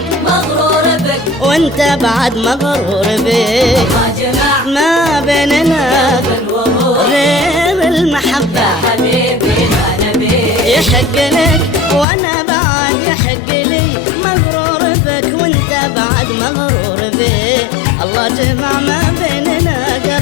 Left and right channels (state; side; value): drops out; right; at 12.1 s